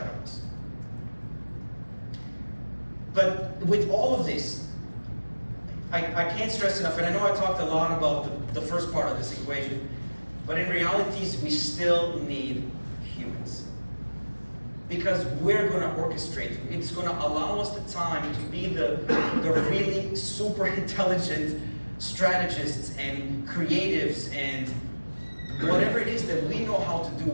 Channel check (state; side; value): inverted; both; correlation -1.00